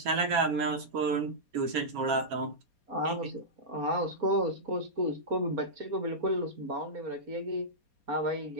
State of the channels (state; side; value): late; left; 4.2 ms